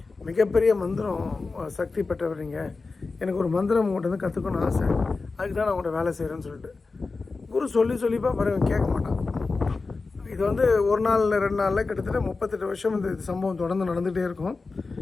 மிகப்பெரிய மந்திரம் சக்தி பெற்றவர் நீங்கள், எனக்கு ஒரு மந்திரம் உங்கள்கிட்ட வந்து கற்றுக்கணும்னு ஆசை, அதுக்கு தான் நான் உங்கள்கிட்ட வேலை செய்கிறேன்னு சொல்லிட்டு குரு சொல்லிப்பா பிறகு கேட்க மாட்டான். இது வந்து ஒரு நாள் 2 நாளில் கிட்டத்தட்ட 38 வருஷம் இந்த சம்பவம் தொடர்ந்து நடந்துகிட்டே இருக்கும்.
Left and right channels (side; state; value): right; quieter; 4.0 dB